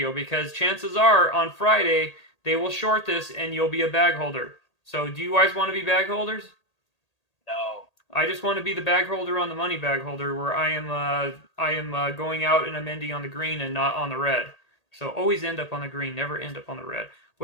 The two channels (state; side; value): late; right; 1.8 ms